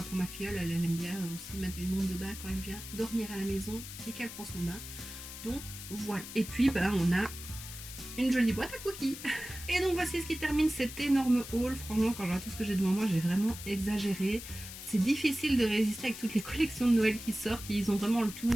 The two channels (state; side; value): noise; left; hiss, 11 dB below the sound